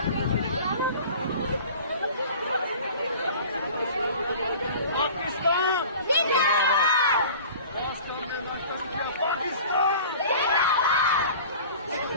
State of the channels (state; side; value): inverted; both; correlation -0.42